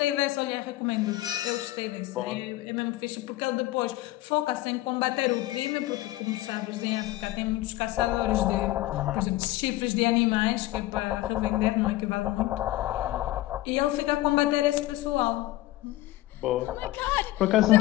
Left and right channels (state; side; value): quieter; right; 17.0 dB